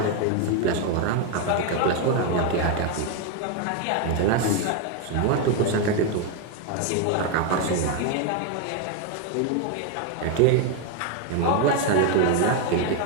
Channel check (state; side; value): different; both; correlation 0.01